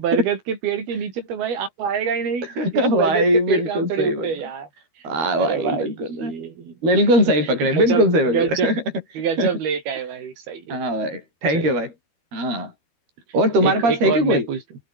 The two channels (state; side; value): late; left; 12 ms